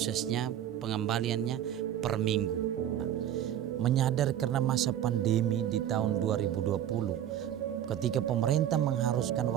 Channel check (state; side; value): quieter; left; 10.9 dB